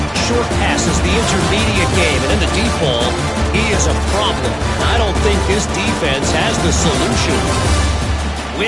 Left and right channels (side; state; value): both; identical; correlation 1.00